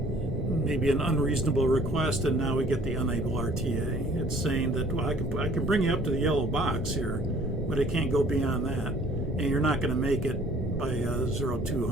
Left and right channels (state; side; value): normal; both; correlation 0.55